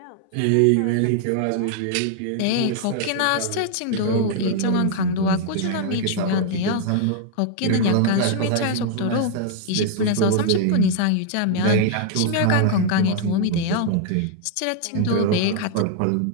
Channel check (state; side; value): different; both; correlation 0.00